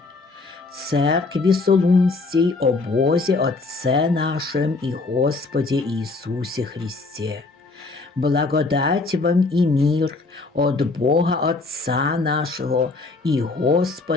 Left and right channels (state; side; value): quieter; right; 3.6 dB